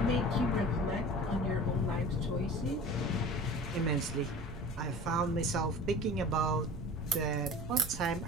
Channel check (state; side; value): noise; right; rumble, 13 dB below the sound